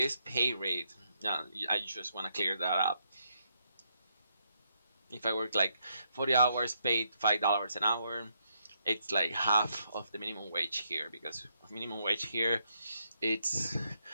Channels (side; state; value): both; inverted; correlation -0.77